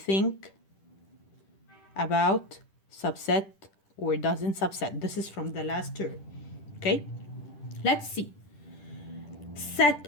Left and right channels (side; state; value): right; late; 10 ms